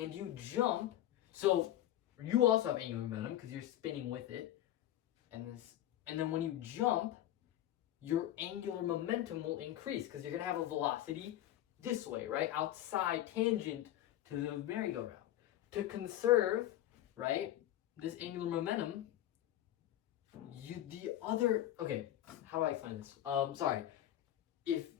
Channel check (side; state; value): right; quieter; 13.1 dB